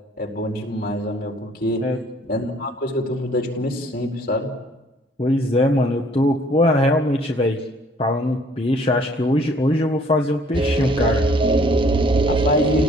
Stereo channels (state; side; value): normal; both; correlation 0.59